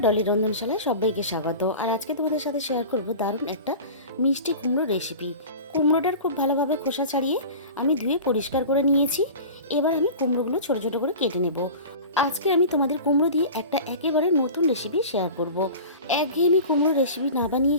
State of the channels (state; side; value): inverted; both; correlation -0.36